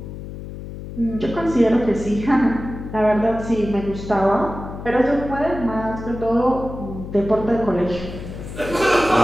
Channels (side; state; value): left; noise; hum, 10 dB below the sound